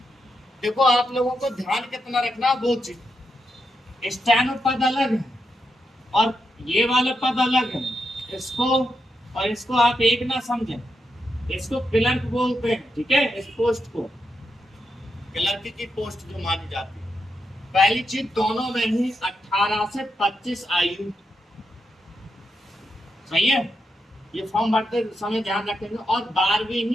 देखो आप लोगों को ध्यान कितना रखना, वो चीज स्टेनो पद अलग है और ये वाला पद अलग है। इसको और इसको आप एक ना समझें, इसको क्लर्क बोलते हैं, ठीक है। इस पोस्ट को क्लर्क की पोस्ट जो मानी जाती है। पहली चीज, दोनों में ही 18 से 25 आयु, सही है। ये फॉर्म भरते समय ध्यान रखेंगे, और 12वीं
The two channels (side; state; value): both; normal; correlation 0.84